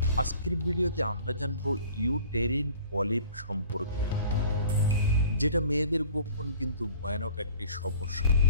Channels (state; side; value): inverted; both; correlation -0.48